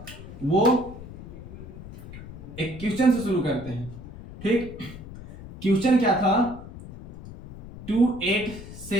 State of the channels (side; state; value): left; noise; rumble, 14 dB below the sound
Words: वो एक क्वेश्चन से शुरू करते हैं। ठीक, क्वेश्चन क्या था,